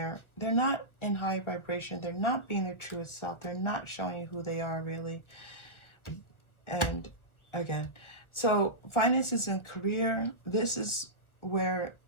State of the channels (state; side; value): late; right; 1.4 ms